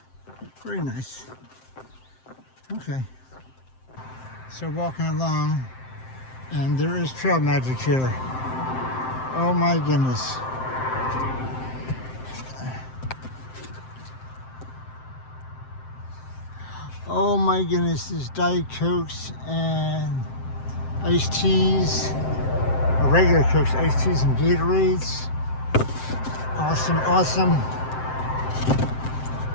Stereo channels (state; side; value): late; right; 7.7 ms